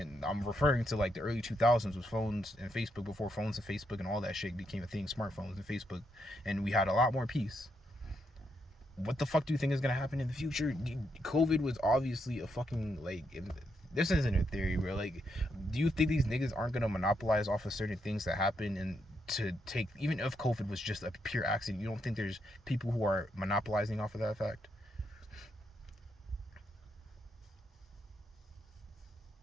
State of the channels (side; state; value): both; normal; correlation 0.79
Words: I'm referring to like the early 2000s with phones and Facebook, before phones and Facebook and all that shit became a thing, smartphones and Facebook, and we had a lot more peace. What the fuck do you think is gonna happen in the future? COVID was obviously a fucking, like, this isn't a theory, bro. Like, do you think these niggas aren't gonna monopolize off of certain things that happen, and to take, even if COVID was just a pure accident, you don't think there's people who are monopolizing off of that fact?